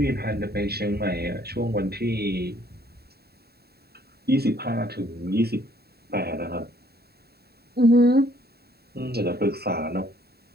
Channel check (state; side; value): late; left; 0.46 ms